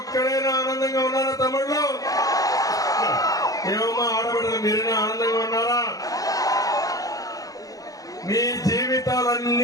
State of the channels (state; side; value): late; right; 0.17 ms